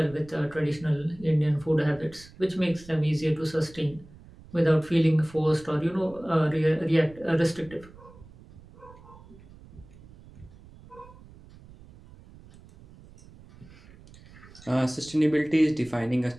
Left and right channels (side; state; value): right; noise; rumble, 21 dB below the sound